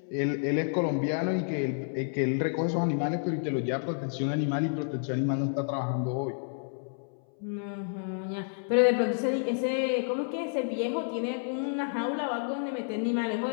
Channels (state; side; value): silent; right; 58 dB below the other